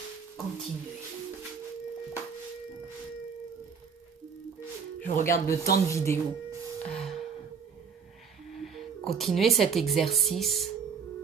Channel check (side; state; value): left; quieter; 6.3 dB